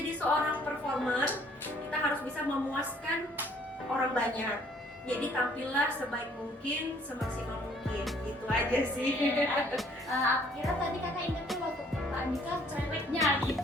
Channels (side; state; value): both; normal; correlation 0.61